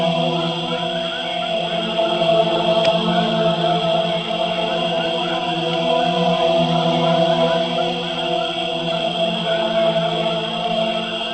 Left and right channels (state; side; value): identical; both; correlation 1.00